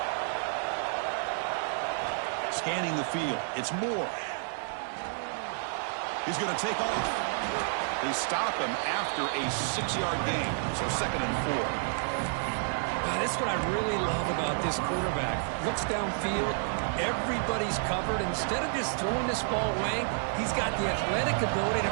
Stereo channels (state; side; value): silent; left; 58 dB below the other